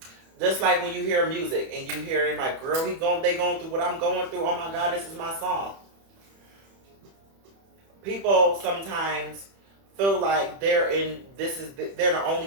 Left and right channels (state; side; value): late; left; 30 ms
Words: just like when you hear music and you hear it like, girl, they going through what I'm going through. Oh my God, this is my song. People sometimes feel like they're the